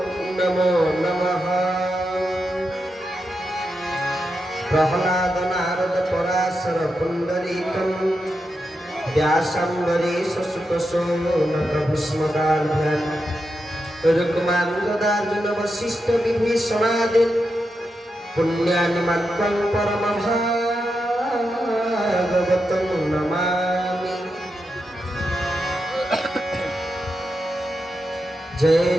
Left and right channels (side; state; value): both; normal; correlation 0.87